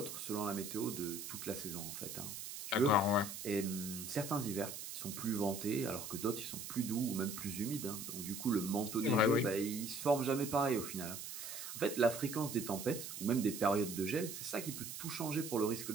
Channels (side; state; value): right; noise; hiss, 8 dB below the sound